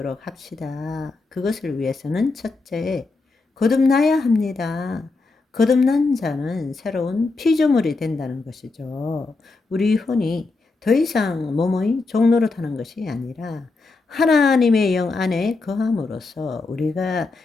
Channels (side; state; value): right; quieter; 3.7 dB